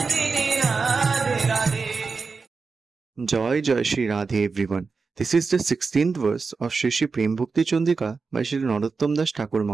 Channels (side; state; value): left; quieter; 4.6 dB